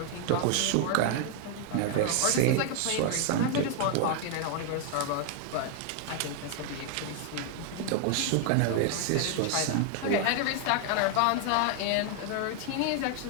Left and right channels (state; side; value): different; both; correlation 0.00